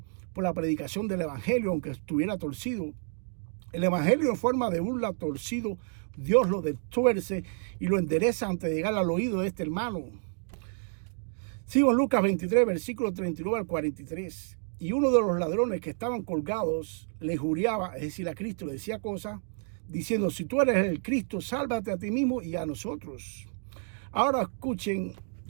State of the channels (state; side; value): silent; left; 58 dB below the other